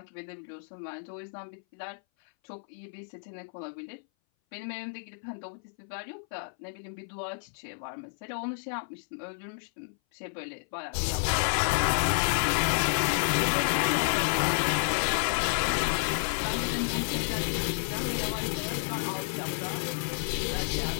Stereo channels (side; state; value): right; silent; 57 dB below the other